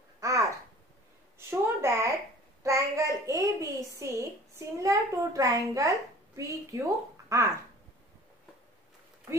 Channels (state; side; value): normal; both; correlation 0.46